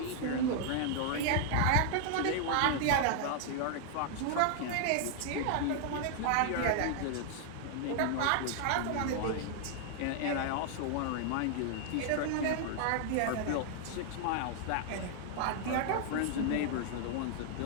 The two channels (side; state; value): both; different; correlation 0.00